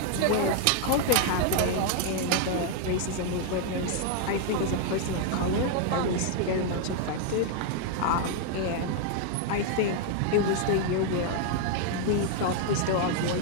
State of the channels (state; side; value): different; both; correlation 0.00